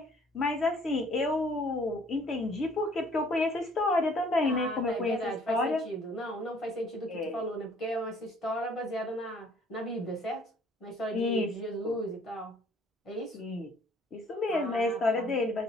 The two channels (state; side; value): normal; both; correlation 0.58